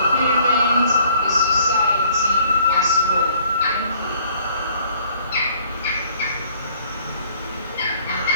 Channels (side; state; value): both; inverted; correlation -0.59